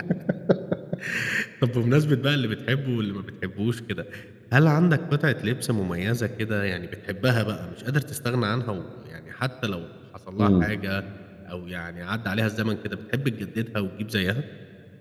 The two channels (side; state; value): both; identical; correlation 1.00